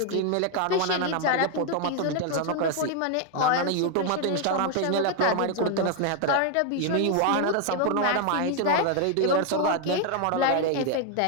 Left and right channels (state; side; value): different; both; correlation 0.00